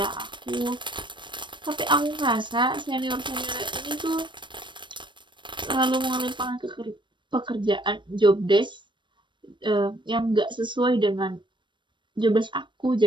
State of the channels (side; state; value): left; late; 0.23 ms